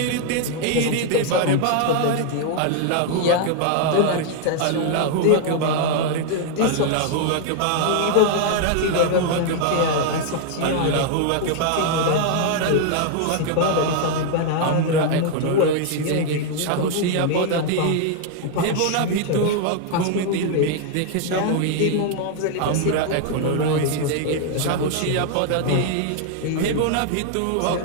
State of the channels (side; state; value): both; different; correlation 0.00